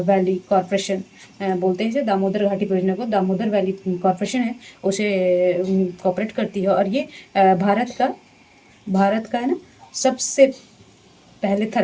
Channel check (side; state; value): both; identical; correlation 1.00